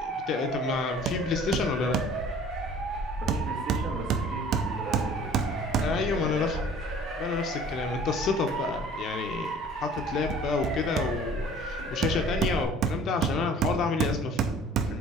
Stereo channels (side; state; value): both; normal; correlation 0.50